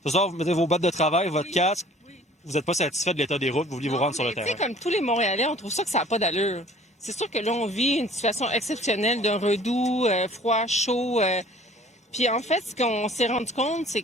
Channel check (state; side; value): normal; both; correlation 0.51